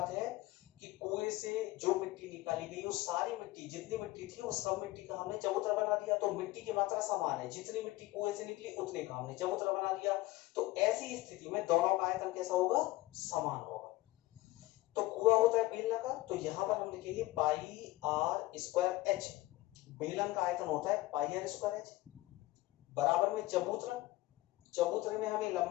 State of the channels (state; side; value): quieter; right; 18.4 dB